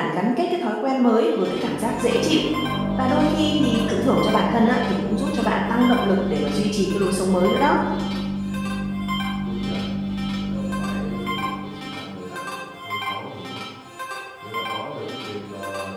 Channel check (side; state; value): both; identical; correlation 1.00